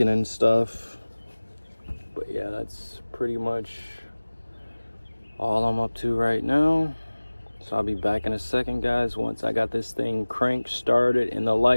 and stuff. But yeah, that's pretty much all I'm up to right now. So I'll be back in a second, guys, once I got this thing cranked started, and the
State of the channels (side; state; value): both; inverted; correlation -1.00